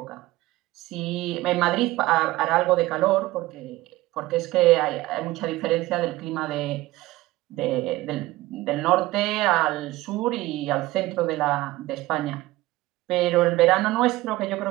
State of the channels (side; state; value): left; quieter; 18.2 dB